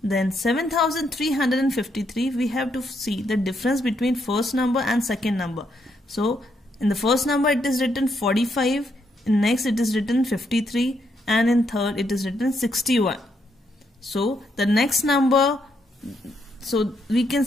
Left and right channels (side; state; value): both; normal; correlation 0.77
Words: then 7353. We have to see the difference between first number and second number. So in the first number it is written 45, in next it is written 53, and in third it is written 61. So the next number, so we can